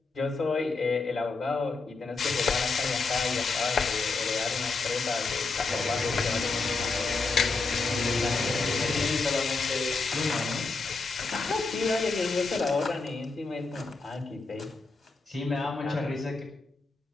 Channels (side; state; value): right; quieter; 4.0 dB